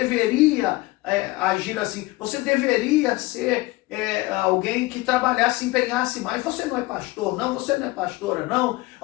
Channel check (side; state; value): right; quieter; 20.6 dB